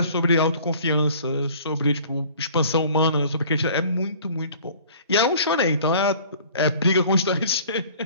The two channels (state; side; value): inverted; both; correlation -0.50